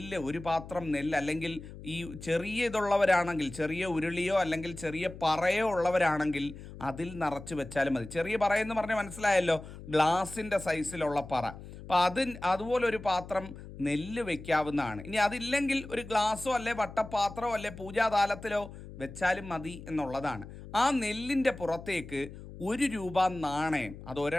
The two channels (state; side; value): noise; left; hum, 14 dB below the sound